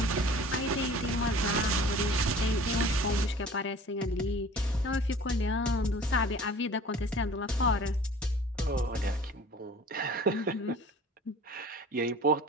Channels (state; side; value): normal; both; correlation 0.45